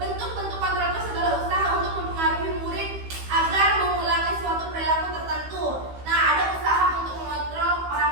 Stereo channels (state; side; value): late; left; 15 ms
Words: kontrol itu segala usaha untuk mempengaruhi murid agar mengulangi suatu perilaku tertentu. Nah, ada usaha untuk mengontrol